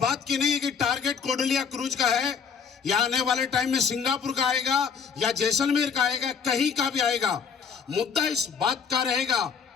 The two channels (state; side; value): quieter; right; 6.4 dB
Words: की नहीं है कि टारगेट कोडलिया क्रूज का है या आने वाले टाइम में सिंगापुर का आएगा या जैसलमेर का आएगा, कहीं का भी आएगा। मुद्दा इस बात का रहेगा